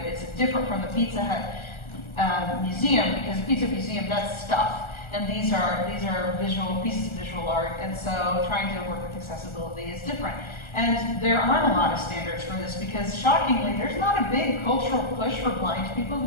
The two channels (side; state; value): right; late; 1.3 ms